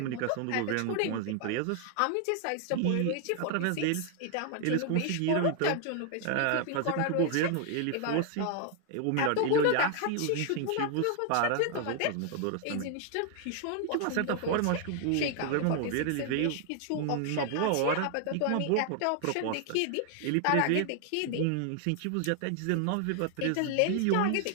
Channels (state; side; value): different; both; correlation 0.00